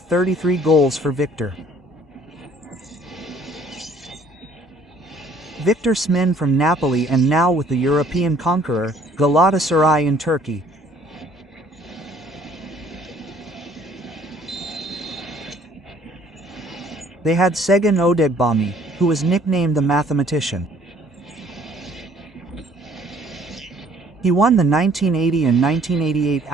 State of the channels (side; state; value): both; normal; correlation 0.58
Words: goals for Victor. Victor Smin from Napoli and now with the European conqueror, Galatasaray in Turkey. They had Segun Odegbami, who was nicknamed the mathematician. He won the 1980 and 1988